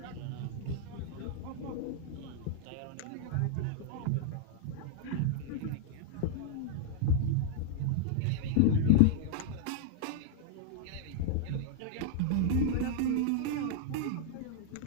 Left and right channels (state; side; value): different; both; correlation -0.01